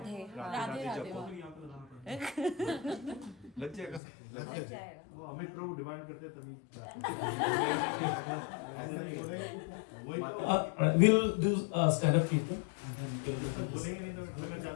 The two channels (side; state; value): right; drops out; at 4.0 s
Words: राधे लग जाएगा वो अमित प्रभु डिमांड करते हैं तभी We'll do stand-up people. बोलेंगे नहीं तो बोलना